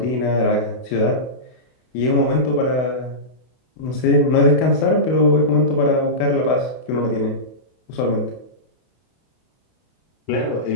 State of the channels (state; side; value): late; right; 32 ms